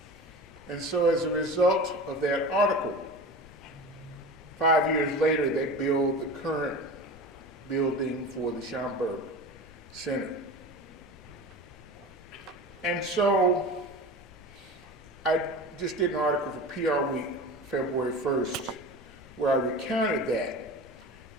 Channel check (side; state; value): left; noise; rumble, 22 dB below the sound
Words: And so as a result of that article, 5 years later, they build the current building for the Schomburg Center. And so I just did an article for PR Week, February 1st, where I recounted that